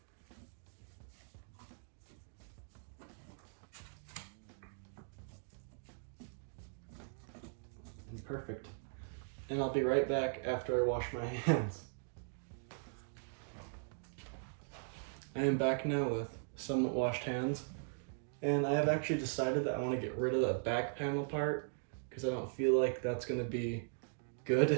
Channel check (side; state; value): left; silent; digital silence